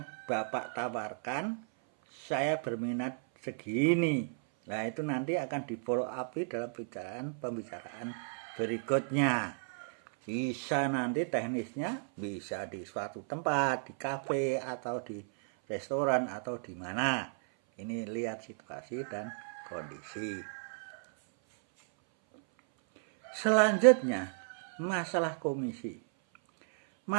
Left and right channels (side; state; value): left; silent; 55 dB below the other